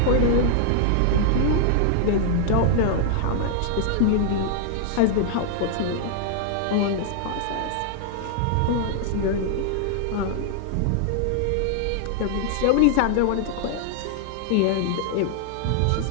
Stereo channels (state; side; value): different; both; correlation 0.00